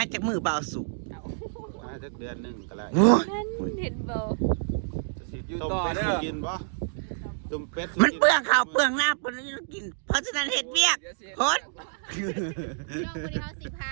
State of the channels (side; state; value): left; silent; digital silence